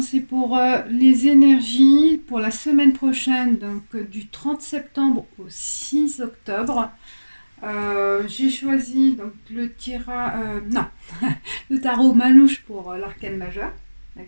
c'est pour les énergies pour la semaine prochaine, donc du 30 septembre au 6 octobre. J'ai choisi donc non, le tarot Manouche pour l'arcane majeur,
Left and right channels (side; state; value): both; inverted; correlation -1.00